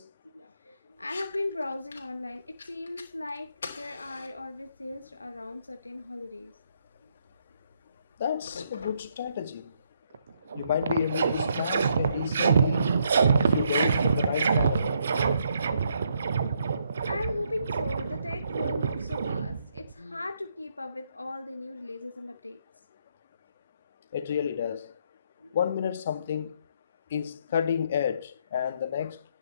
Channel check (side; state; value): both; inverted; correlation -0.74